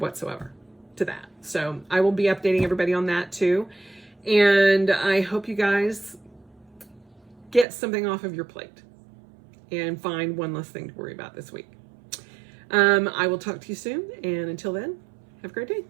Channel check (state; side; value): drops out; left; at 7.7 s